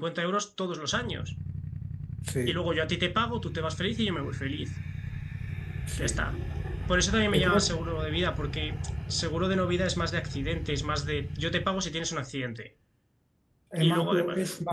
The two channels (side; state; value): both; identical; correlation 1.00